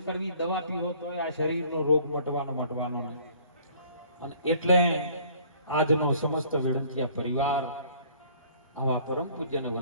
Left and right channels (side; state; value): both; inverted; correlation -0.56